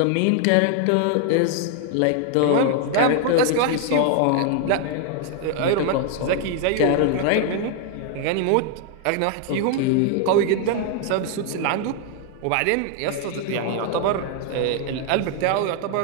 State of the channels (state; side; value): different; both; correlation 0.00